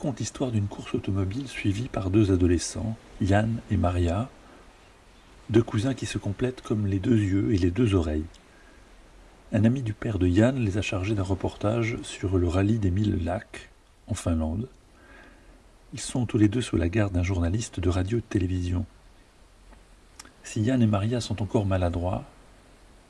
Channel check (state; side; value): identical; both; correlation 1.00